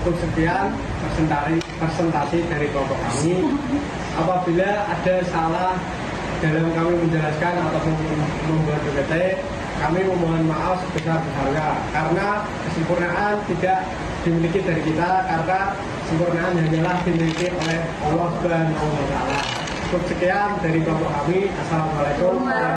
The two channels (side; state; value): both; identical; correlation 1.00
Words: sekian presentasi dari kelompok kami. Apabila ada salah dalam kami menjelaskan ataupun membuat PPT, kami memohon maaf sebesar-besarnya karena kesempurnaan tidak dimiliki dari kita, karena kesempurnaan hanyalah dimiliki oleh Allah Subhanahu wa Ta'ala. Cukup sekian dari kelompok kami. Assalamualaikum